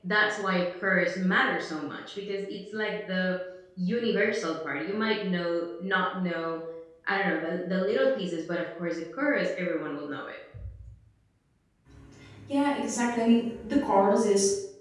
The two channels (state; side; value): identical; both; correlation 1.00